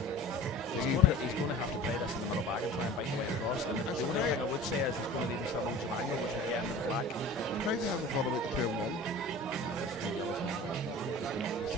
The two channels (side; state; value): both; normal; correlation 0.39